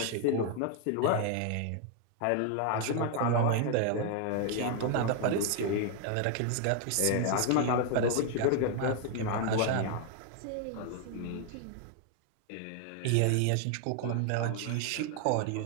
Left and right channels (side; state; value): both; different; correlation 0.00